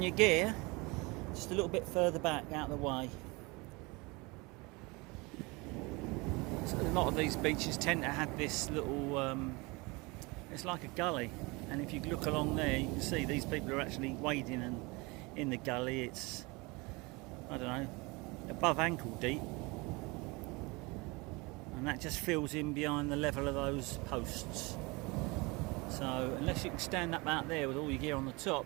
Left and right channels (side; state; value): left; quieter; 25.8 dB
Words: your gear just a little bit further back out of the way. So a lot of these beaches tend to have this little, it's like a gully, and if you look along there you can see these people are actually wading in the gully. It's, I don't know, above ankle deep, and that just fills in behind the level of those posts. So unless you can stand up out there with all your gear on the top